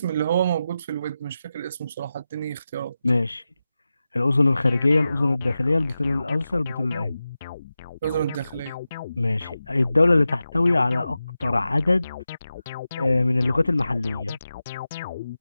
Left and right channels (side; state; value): both; inverted; correlation -0.92